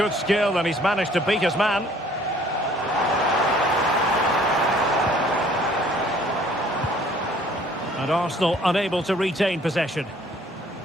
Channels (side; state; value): both; normal; correlation 0.57